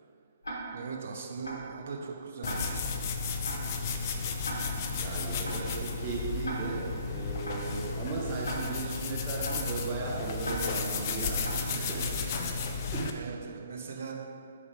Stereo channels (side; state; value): both; inverted; correlation -0.55